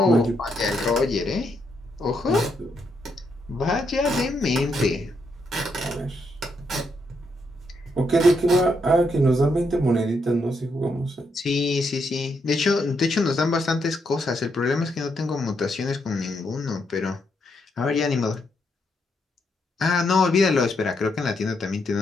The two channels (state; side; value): normal; both; correlation 0.78